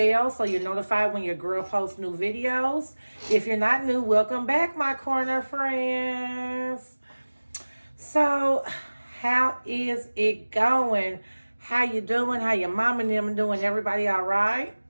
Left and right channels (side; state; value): both; inverted; correlation -1.00